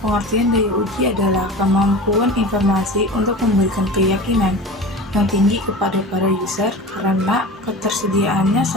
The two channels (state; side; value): normal; both; correlation 0.33